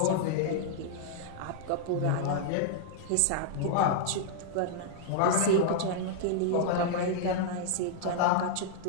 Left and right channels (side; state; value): both; different; correlation -0.01